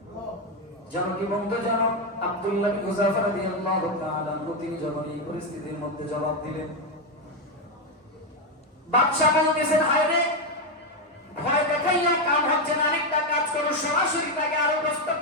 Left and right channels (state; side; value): normal; both; correlation 0.07